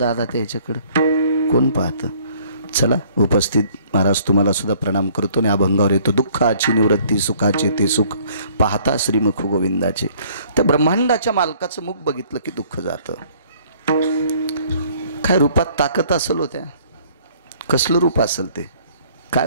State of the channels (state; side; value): inverted; both; correlation -0.58